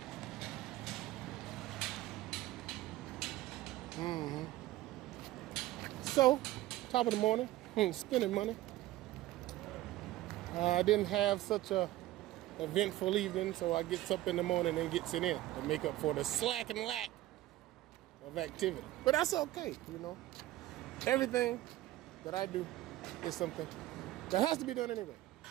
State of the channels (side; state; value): left; quieter; 15.8 dB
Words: So, top of the morning, spending money. I didn't have such a eventful evening, so I gets up in the morning and gets it in to make up for the slack and lack of activity. But that's okay, you know. Everything that I do is something that has to be done anyway.